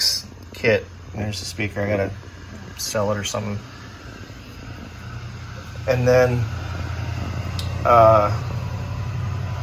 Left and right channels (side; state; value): both; identical; correlation 1.00